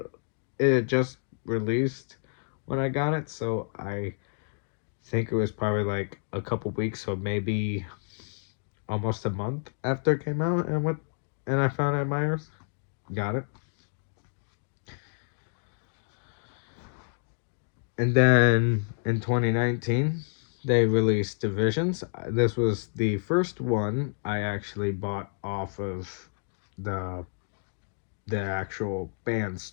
it just released when I got it, so I think it was probably like a couple weeks, or maybe almost a month after it came out, and I found it at Myers. Got it. And then in 2019, they released Divisions. This was the first one I actually bought off of the actual band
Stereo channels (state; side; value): silent; right; digital silence